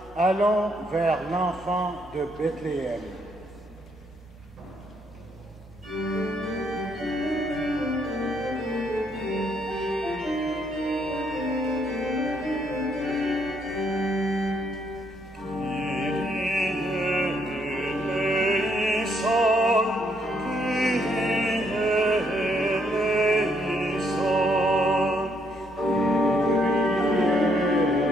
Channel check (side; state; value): both; normal; correlation 0.72